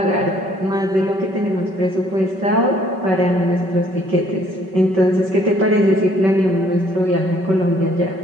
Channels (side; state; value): left; late; 5.3 ms